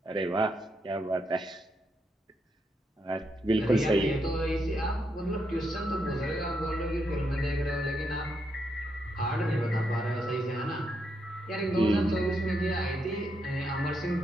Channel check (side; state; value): both; normal; correlation 0.80